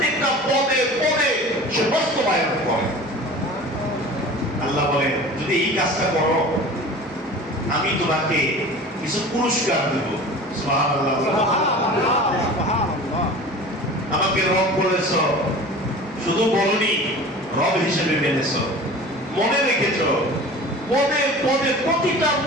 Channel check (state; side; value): normal; both; correlation 0.39